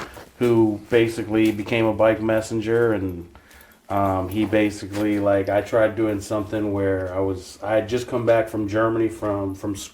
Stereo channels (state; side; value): identical; both; correlation 1.00